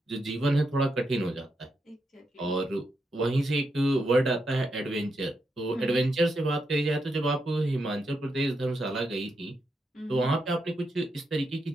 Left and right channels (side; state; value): both; normal; correlation 0.83